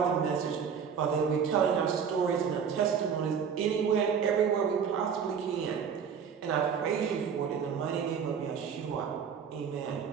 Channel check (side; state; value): left; quieter; 7.0 dB